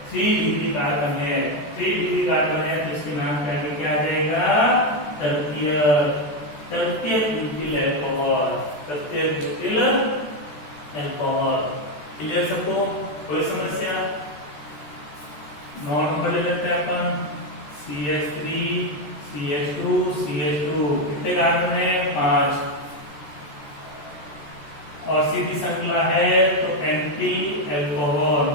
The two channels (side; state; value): right; late; 14 ms